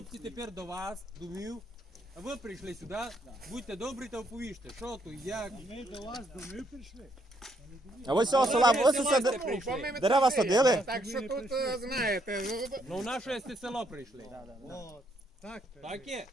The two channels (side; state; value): both; normal; correlation 0.73